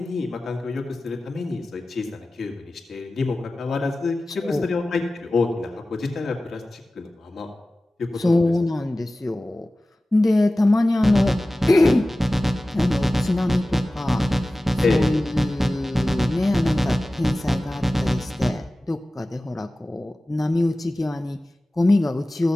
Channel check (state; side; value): normal; both; correlation 0.96